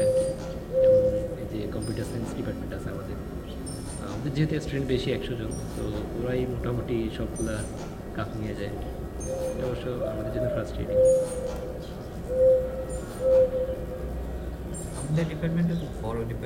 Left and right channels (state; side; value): identical; both; correlation 1.00